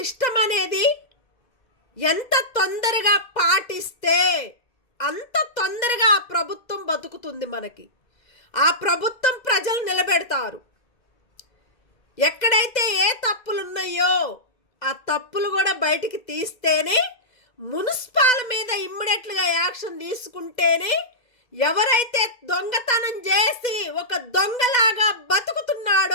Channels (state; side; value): late; right; 2.0 ms